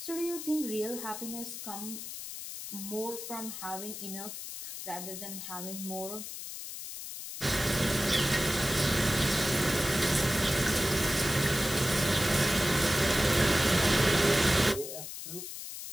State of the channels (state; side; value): noise; left; hiss, 9 dB below the sound